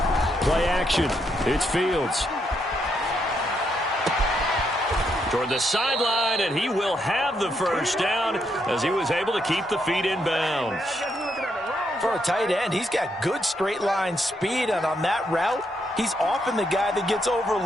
Play action. It's Fields. Toward the sideline, and he will have the 1st down as he was able to keep the feet in bounds. For a tight end, he's got good straight line speed, and on that route, he's often the guy that gets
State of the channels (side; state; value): both; normal; correlation 0.78